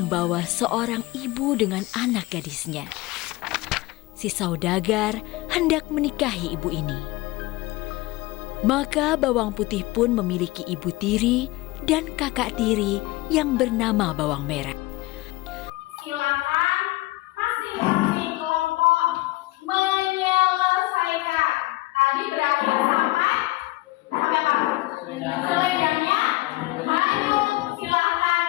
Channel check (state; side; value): quieter; right; 19.9 dB